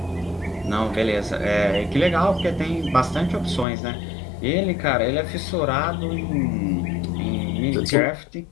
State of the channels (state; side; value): drops out; right; at 3.7 s